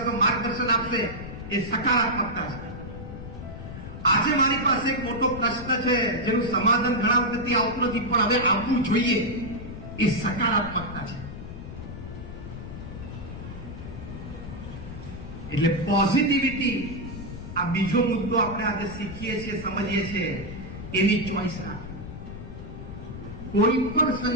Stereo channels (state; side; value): noise; left; rumble, 11 dB below the sound